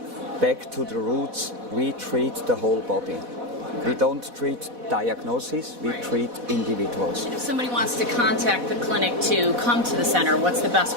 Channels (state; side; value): late; left; 4.1 ms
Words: back to the roots, we treat the whole body. We don't treat diagnoses, we treat individuals. If somebody wants to contact the clinic to come to the center, what's the best